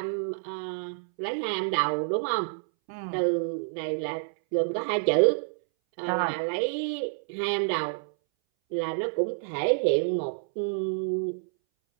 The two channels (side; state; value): left; silent; 59 dB below the other